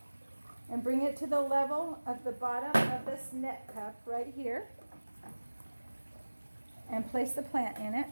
and bring it to the level of the bottom of this net cup right here. And place the plant in it.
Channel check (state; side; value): inverted; both; correlation -1.00